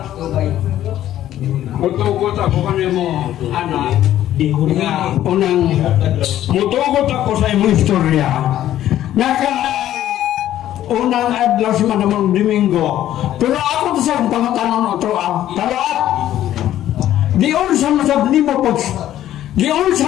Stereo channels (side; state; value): right; quieter; 12.5 dB